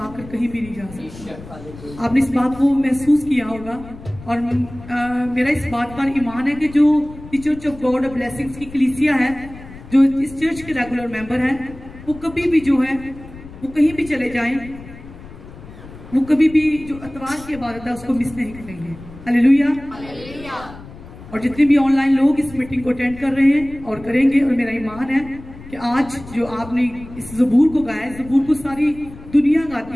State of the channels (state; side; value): noise; left; rumble, 17 dB below the sound